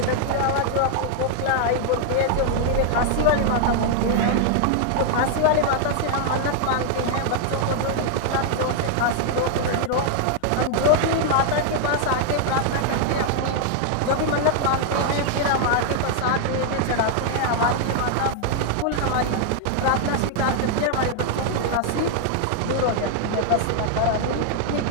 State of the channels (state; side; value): different; both; correlation -0.01